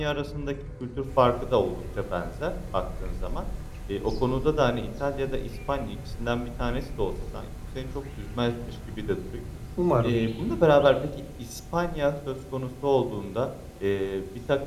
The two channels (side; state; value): both; identical; correlation 1.00